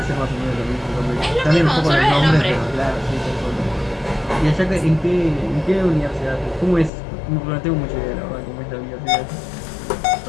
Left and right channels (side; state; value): right; drops out; at 6.9 s